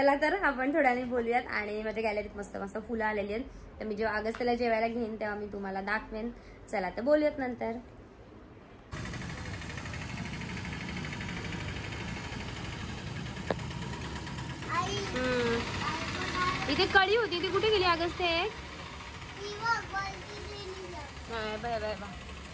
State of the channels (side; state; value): both; identical; correlation 1.00